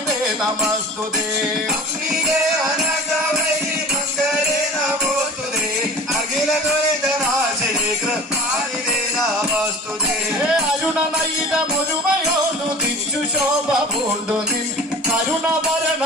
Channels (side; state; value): both; normal; correlation 0.40